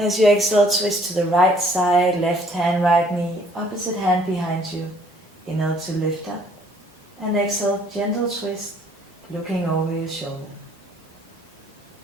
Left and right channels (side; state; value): both; normal; correlation 0.60